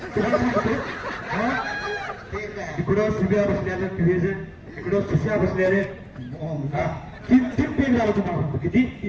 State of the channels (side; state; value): both; identical; correlation 1.00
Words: सांगतो हा? ठीक आहे. इकडं सुब्या बसल्याले क्रिएजन इकडं सुश्या बसल्याले हा. तीन पेन झालं तुम्हाला सांगतो किती